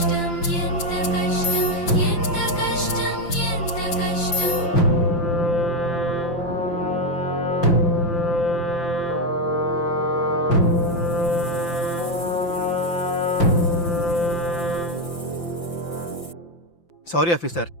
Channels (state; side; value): late; right; 5.8 ms